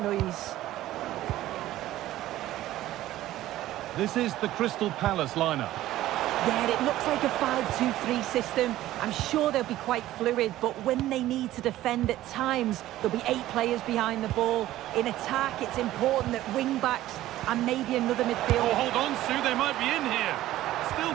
noise. This is the Crystal Palace lineup. Yeah, it looks like a 5-2-3 system. I'm sure they'll be quite fluid, but when they need to defend at times, there'll be 8 players behind the ball. In attack, it's important that wing-backs and maybe another midfielder... Oh, hold on, Sue, they might be in here.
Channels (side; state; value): left; quieter; 14.7 dB